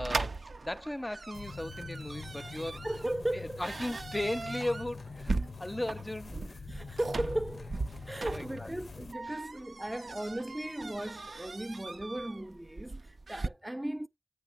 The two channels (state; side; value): normal; both; correlation 0.97